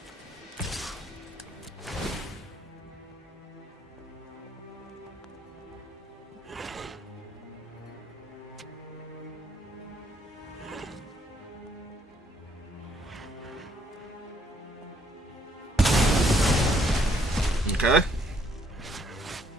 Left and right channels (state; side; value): normal; both; correlation 0.68